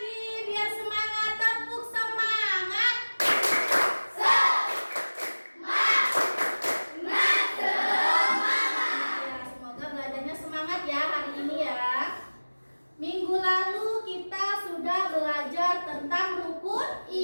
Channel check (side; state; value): both; inverted; correlation -1.00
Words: biar semangat, tepuk semangat. Ya, semoga belajarnya semangat ya hari ini ya. Minggu lalu kita sudah belajar tentang rukun